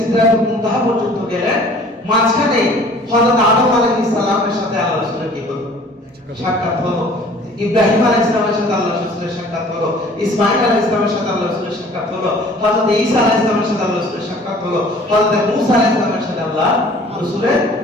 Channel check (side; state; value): both; normal; correlation 0.51